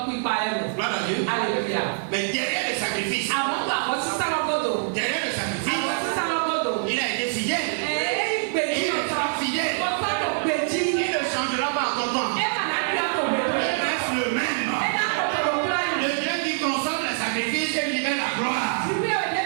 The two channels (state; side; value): silent; left; digital silence